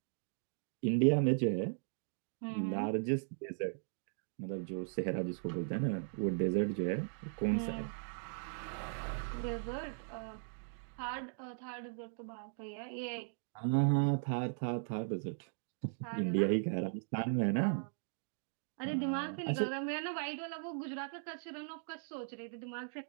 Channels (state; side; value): silent; left; digital silence